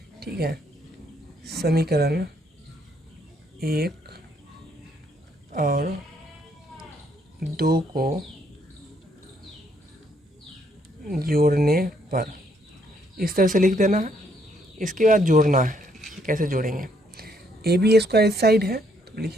ठीक है, समीकरण 1 और 2 को जोड़ने पर इस तरह से लिख देना है। इसके बाद जोड़ना है, कैसे जोड़ेंगे, ए बी स्क्वायर इस साइड है तो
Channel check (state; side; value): normal; both; correlation 0.70